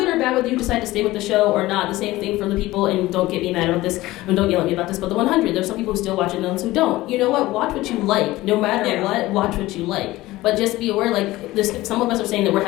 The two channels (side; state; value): right; quieter; 17.9 dB